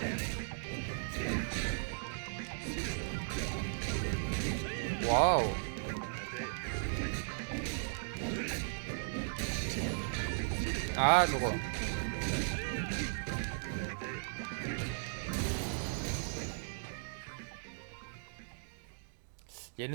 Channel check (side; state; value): left; silent; digital silence